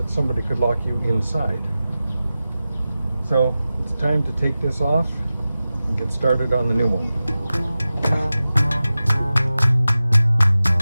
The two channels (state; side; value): inverted; both; correlation -0.95